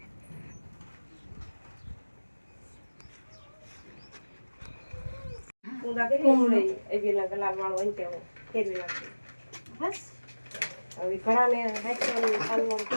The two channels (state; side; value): inverted; both; correlation -1.00